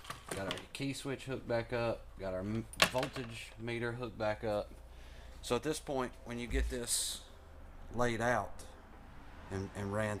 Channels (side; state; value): both; identical; correlation 1.00